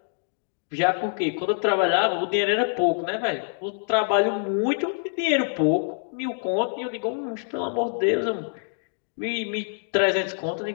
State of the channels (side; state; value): right; silent; digital silence